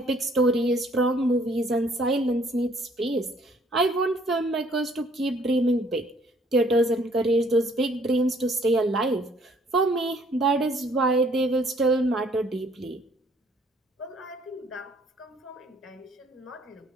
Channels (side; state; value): both; normal; correlation 0.62